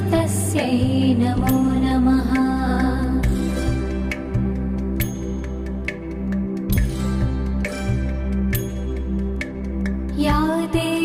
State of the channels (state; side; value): identical; both; correlation 1.00